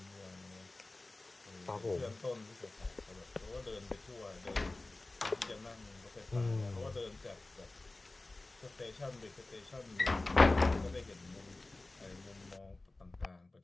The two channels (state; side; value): quieter; right; 3.0 dB